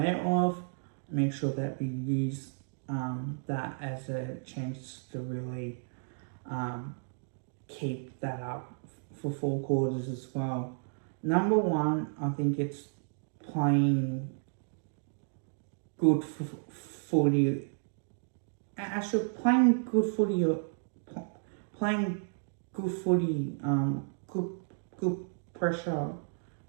of, make sure that we use that as a chance to really keep that up for 4 quarters as well. Number one, I think it's playing good footy. Actually, playing good footy, good pressure,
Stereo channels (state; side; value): silent; left; digital silence